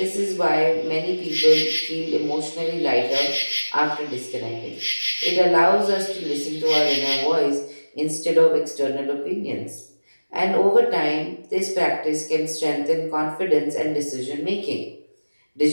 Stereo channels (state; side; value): inverted; both; correlation -1.00